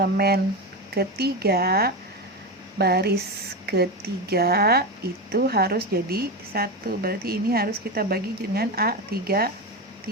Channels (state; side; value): normal; both; correlation 0.17